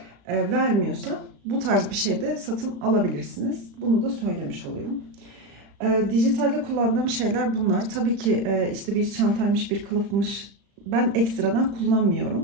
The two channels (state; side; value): late; left; 35 ms